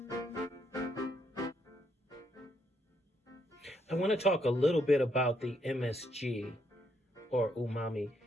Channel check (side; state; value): both; normal; correlation 0.74